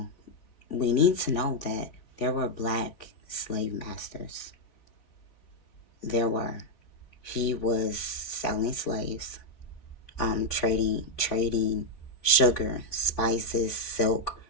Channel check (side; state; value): right; late; 3.8 ms